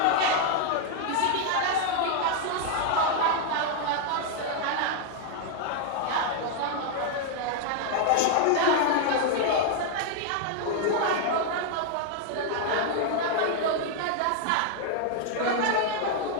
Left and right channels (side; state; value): both; different; correlation 0.00